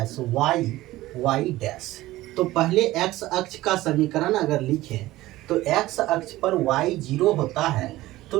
वाई डैश। तो पहले एक्स अक्ष का समीकरण अगर लिखें तो एक्स अक्ष पर y 0 होता है, तो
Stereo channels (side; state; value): left; quieter; 17.0 dB